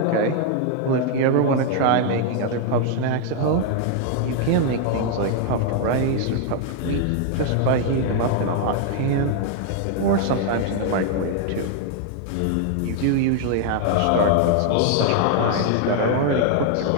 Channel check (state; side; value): different; both; correlation 0.00